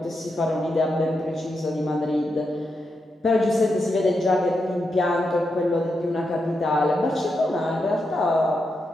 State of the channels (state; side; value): normal; both; correlation 0.85